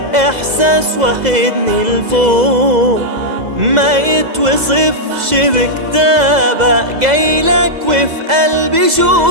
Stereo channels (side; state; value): left; late; 2.0 ms